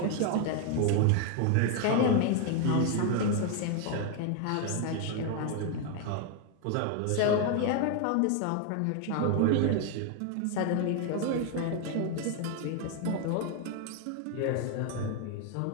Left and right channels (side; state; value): both; different; correlation 0.01